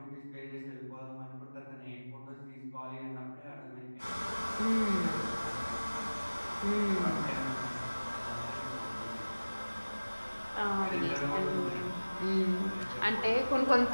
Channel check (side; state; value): both; inverted; correlation -1.00